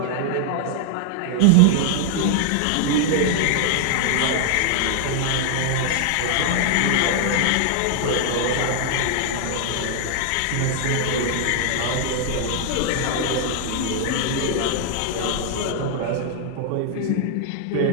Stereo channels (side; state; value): both; different; correlation -0.01